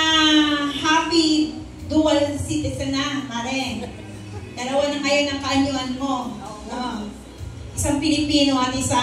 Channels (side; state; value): both; identical; correlation 1.00